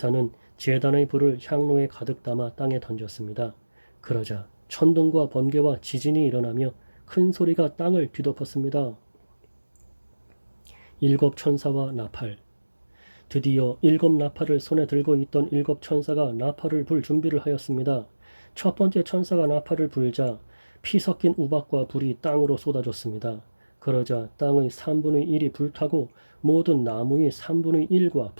제단의 불을 향로에 가득 담아 땅에 던졌습니다. 그러자 천둥과 번개와 지진이 일어나며 큰 소리가 땅을 뒤덮었습니다. 7 천사와 나팔. 드디어 7 나팔을 손에 들고 있던 7 천사가 나팔을 불 준비를 하였습니다. 첫 번째 천사가 나팔을 불자 피 섞인 우박과 불이 땅으로 쏟아졌습니다. 그러자 땅의 3분의 1이 불타고 모든 나무의 3분의 1과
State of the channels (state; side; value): inverted; both; correlation -1.00